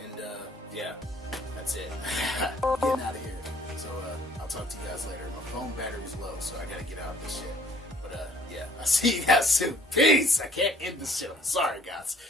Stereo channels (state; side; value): normal; both; correlation 0.59